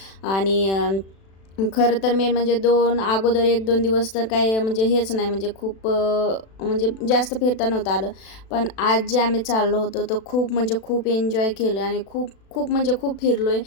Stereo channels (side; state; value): right; late; 36 ms